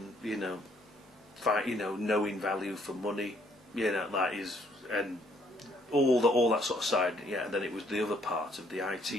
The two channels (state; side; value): normal; both; correlation 0.66